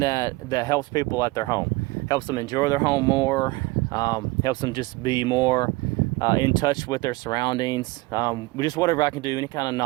helps people at their home, helps them enjoy their home more, helps them just be more in touch with their surroundings. Just whatever I can do, any kind of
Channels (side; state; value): left; quieter; 22.6 dB